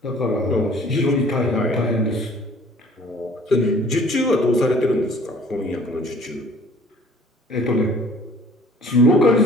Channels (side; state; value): both; normal; correlation 0.53